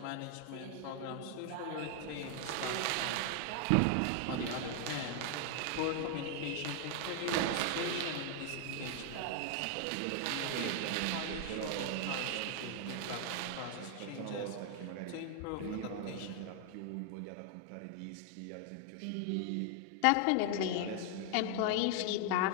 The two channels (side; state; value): both; different; correlation 0.00